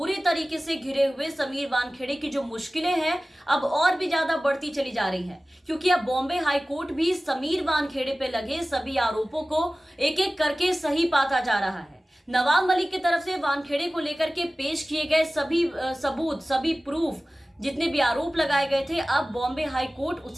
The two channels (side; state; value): both; normal; correlation 0.97